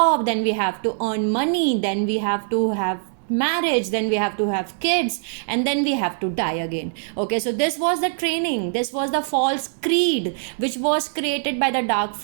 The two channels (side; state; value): left; silent; digital silence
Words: then we have to earn money, then we have to have marriage, then we have to have kids, and then we have to die again. Okay, so this was the training, this was the false creed which was created by the dark